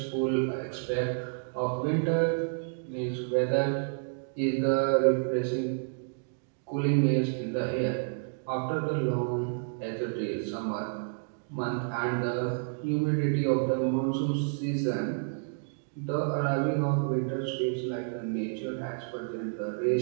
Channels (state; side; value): silent; left; digital silence